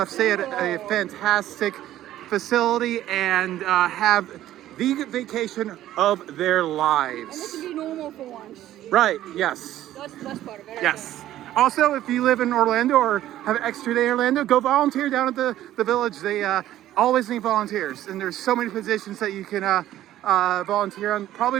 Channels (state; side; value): quieter; left; 13.3 dB